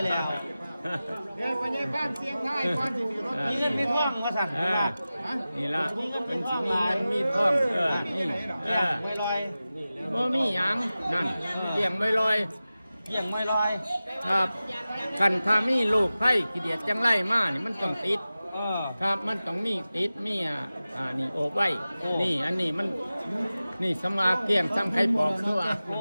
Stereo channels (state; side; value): inverted; both; correlation -0.96